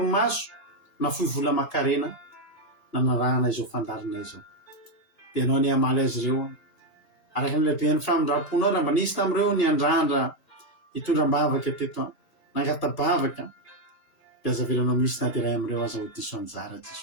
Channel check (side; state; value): right; late; 2.8 ms